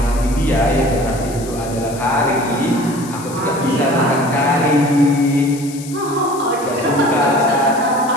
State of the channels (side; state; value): left; noise; hiss, 15 dB below the sound